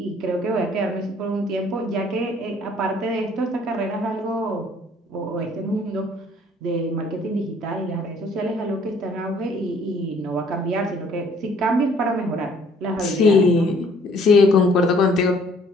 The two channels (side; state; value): both; normal; correlation 0.59